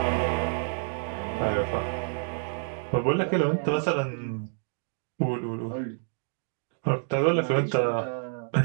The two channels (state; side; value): silent; left; digital silence